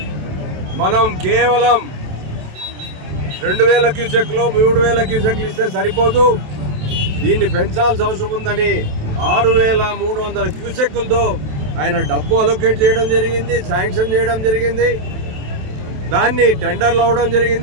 మనం కేవలం 2,000 క్యూసెక్లు 3,000 క్యూసెక్లు ఇస్తే సరిపోదు, దీన్ని పెంచాల్సిన అవసరం ఉందని 6,300 క్యూసెక్కులతో ఆయన డబ్బు అలొకేట్ చేయడం జరిగింది, శాంక్షన్ చేయడం జరిగింది. దాన్ని టెండర్లు అవ్వడం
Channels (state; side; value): late; left; 27 ms